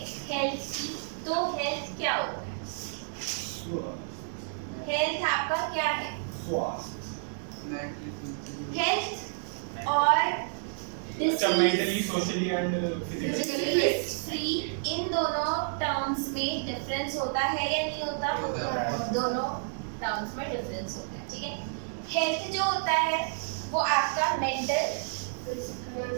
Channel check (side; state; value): left; silent; digital silence